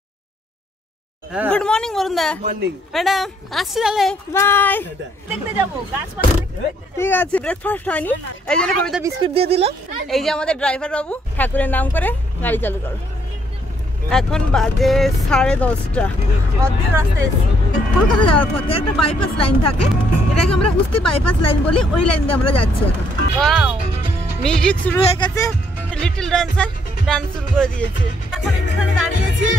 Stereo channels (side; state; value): both; normal; correlation 0.70